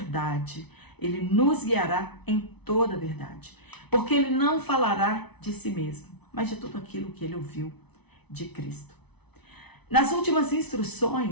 ele nos guiará em toda a verdade. porque ele não falará de si mesmo, mas de tudo aquilo que ele ouviu de Cristo. Nas últimas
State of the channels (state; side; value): late; right; 0.99 ms